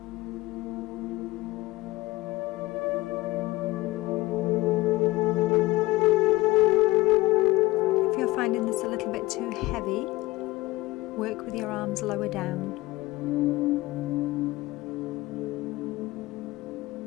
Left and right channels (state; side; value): quieter; right; 19.4 dB